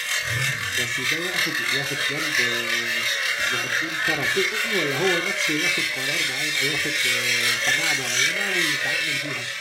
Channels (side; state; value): both; identical; correlation 1.00